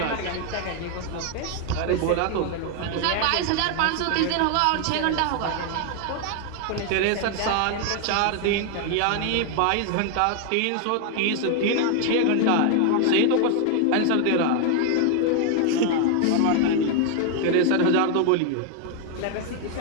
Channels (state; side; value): different; both; correlation 0.00